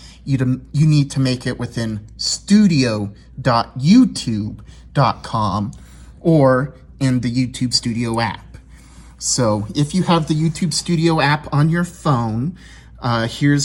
You need to make it within studio.youtube.com or in the YouTube Studio app. So if you have the YouTube Studio app on your phone,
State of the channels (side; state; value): both; identical; correlation 1.00